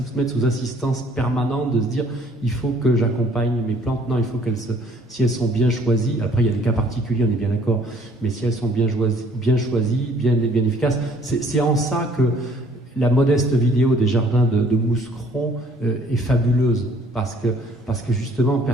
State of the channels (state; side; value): normal; both; correlation 0.59